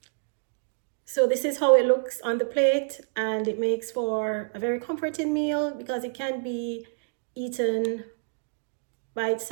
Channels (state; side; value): silent; left; digital silence